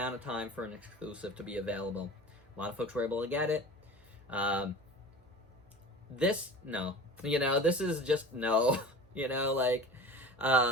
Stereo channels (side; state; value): right; noise; hum, 29 dB below the sound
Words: of time for an exclusive to be available. A lot of folks were able to get it. This, no. This is just no.